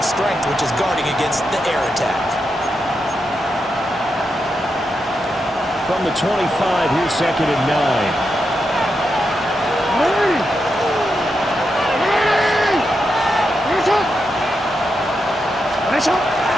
strength, which is guarding against the air attack. From the 25, here's second and 9.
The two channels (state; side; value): normal; both; correlation 0.85